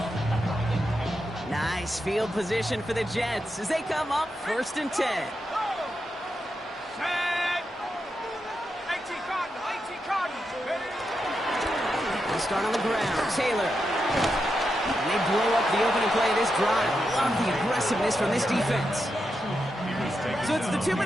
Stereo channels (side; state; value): both; normal; correlation 0.86